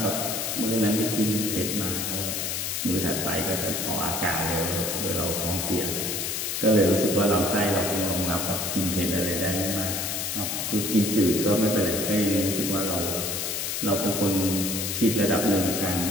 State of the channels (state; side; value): noise; left; hiss, 2 dB below the sound